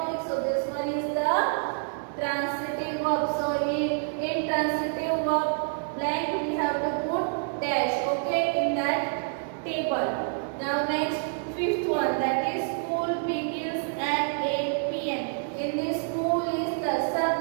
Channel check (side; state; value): left; silent; digital silence